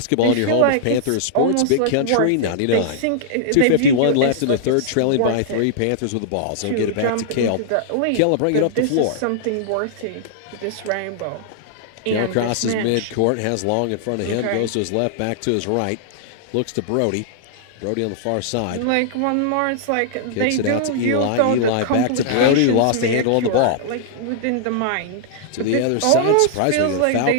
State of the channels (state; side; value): different; both; correlation -0.01